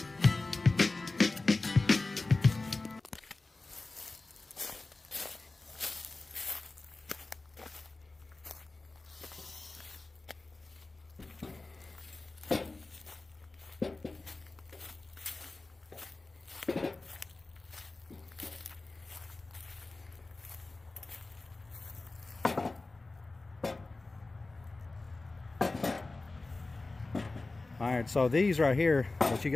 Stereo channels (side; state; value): right; quieter; 3.3 dB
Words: All right, so these right here, what you